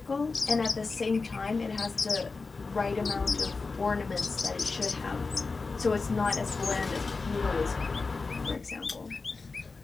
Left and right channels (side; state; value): right; quieter; 4.1 dB